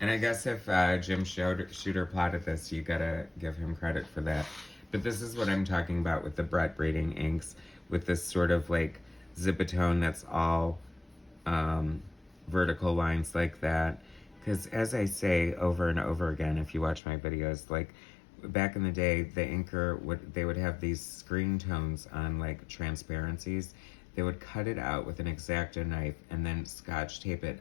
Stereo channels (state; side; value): drops out; right; at 17.0 s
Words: And I guess if Jim Shooter plotted this, you gotta give him credit for that. But this is what I'm talking about with the Brett Breeding inks, with this sort of like zipatone that's all vertical lines like that. Because as I say over and over again, if you watch my videos, like back in the day, the inker would have these screen tones on like transparencies. They would cut it out with an X-Acto knife and then scotch tape